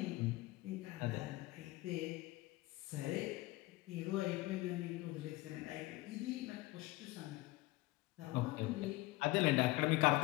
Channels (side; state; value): right; quieter; 20.1 dB